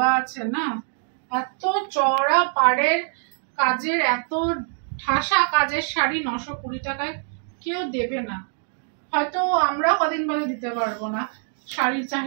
আছে না, এত চওড়া পাড়ের কাজের, এত ঠাসা কাজের শাড়ি 920 টাকায় কেউ দেবে না। হয়তো আমরা কদিন বাদে দিতে পারবো না, শাড়ির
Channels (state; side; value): silent; left; 62 dB below the other